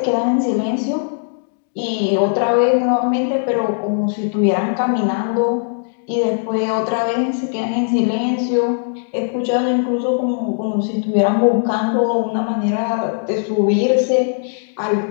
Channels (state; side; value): silent; right; digital silence